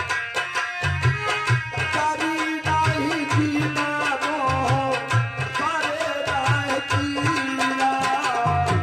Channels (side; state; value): both; identical; correlation 1.00